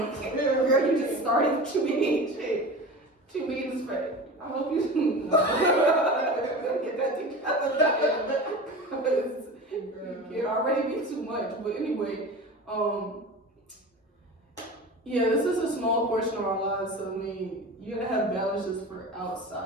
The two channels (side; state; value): both; normal; correlation 0.32